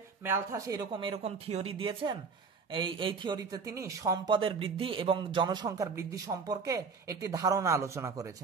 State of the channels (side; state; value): left; quieter; 5.3 dB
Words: ম্যালথাস এরকম থিওরি দিয়েছেন, এই থিওরিতে তিনি সম্পদের বৃদ্ধি এবং জনসংখ্যার বৃদ্ধি সম্পর্কে একটি ধারণা আলোচনা